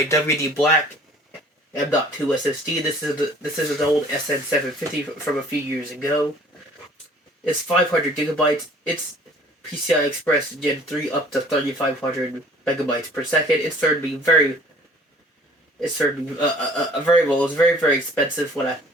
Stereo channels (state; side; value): normal; both; correlation 0.52